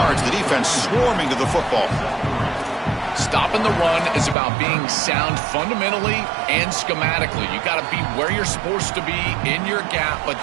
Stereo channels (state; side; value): drops out; left; at 4.4 s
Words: The defense swarming to the football. Stopping the run is about being sound fundamentally and schematically. You got to be where you're supposed to be in your gap, but